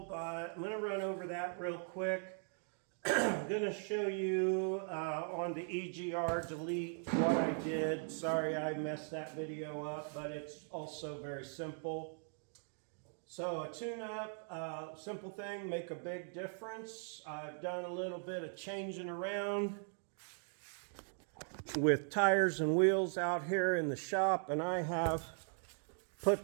but I'm going to run over that real quick. I'm going to show you on the EGR delete what I did. Sorry I messed that video up, but it's also very simple. So a tune-up, simple thing, make a big difference. I've done a little bit of changing around with tires and wheels out here in the shop, and I have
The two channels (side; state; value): left; silent; 51 dB below the other